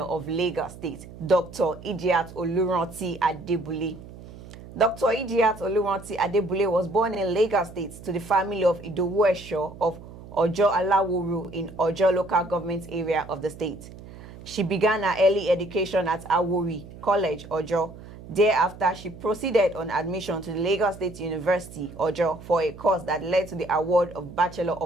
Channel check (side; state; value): right; noise; hum, 16 dB below the sound